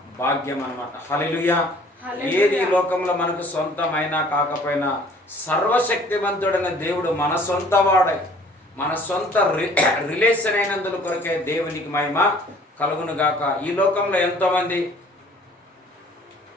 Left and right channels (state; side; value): normal; both; correlation 0.54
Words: భాగ్యం అన్నమాట. హల్లెలూయా. ఏది ఈ లోకంలో మనకు సొంతమైనా కాకపోయినా సర్వశక్తివంతుడైన దేవుడు మన సొంత వాడై, మన సొంత రిలేషన్ అయినందుల కొరకే దేవునికి మహిమ కలుగును గాక. ఈ లోకంలో ఎంతోమంది